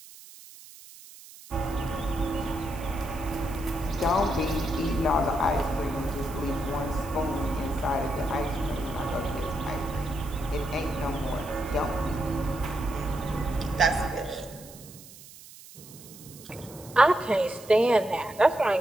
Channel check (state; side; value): noise; right; hiss, 19 dB below the sound